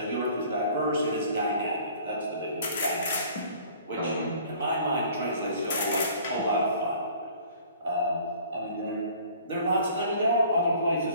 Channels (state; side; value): inverted; both; correlation -0.52